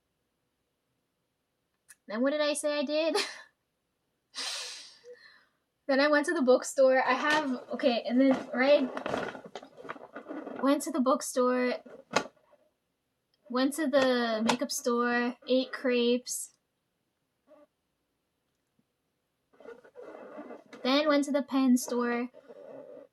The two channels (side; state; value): both; identical; correlation 1.00